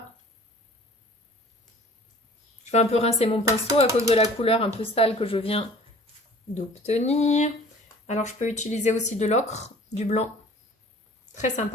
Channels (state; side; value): normal; both; correlation 0.48